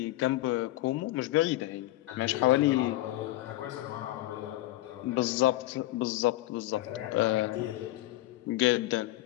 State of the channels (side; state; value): right; quieter; 16.7 dB